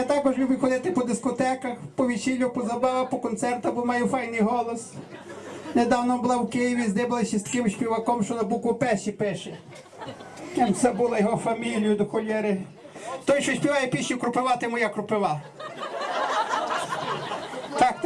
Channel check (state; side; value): identical; both; correlation 1.00